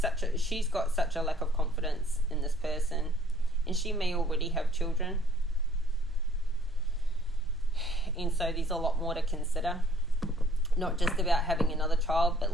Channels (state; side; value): normal; both; correlation 0.59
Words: she's got such a lack of confidence in this person, and she may already have children, and so there's a lot more to consider. Not just about having another child, but